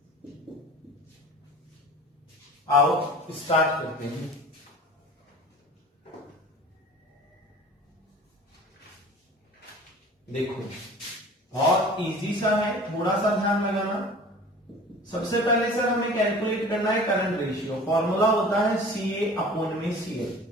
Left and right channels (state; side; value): normal; both; correlation 0.42